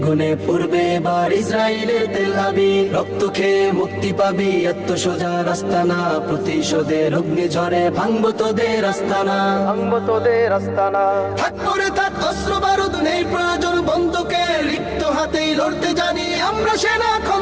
পূর্বে এবার ইসরায়েলের তেল আবিব। রক্ত খেয়ে মুক্তি পাবি, এত সোজা রাস্তা না। প্রতিশোধের অগ্নি ঝরে ভাঙবো তোদের আস্তানা, ভাঙবো তোদের আস্তানা। থাক পরে থাক অস্ত্র বারুদ, নেই প্রয়োজন বন্দুকের। রিক্ত হাতেই লড়তে জানি আমরা সেনা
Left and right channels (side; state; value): both; identical; correlation 1.00